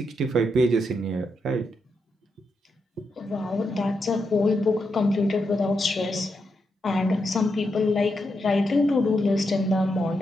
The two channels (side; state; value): both; normal; correlation 0.84